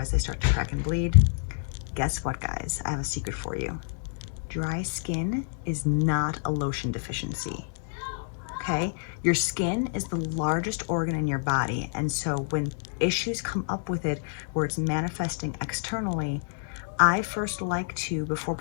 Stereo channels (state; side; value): silent; right; digital silence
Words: they start to crack and bleed? Guess what, guys? I have a secret for you. Dry skin is not a lotion deficiency, okay? Your skin is the largest organ in your body, and so when issues come up with it where it's manifesting externally, I first like to, before